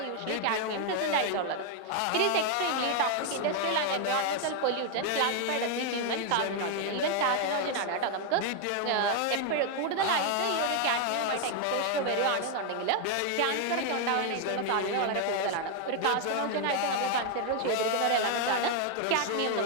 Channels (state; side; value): different; both; correlation 0.01